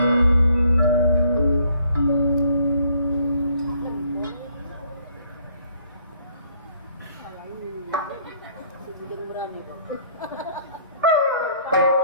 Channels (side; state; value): both; inverted; correlation -0.62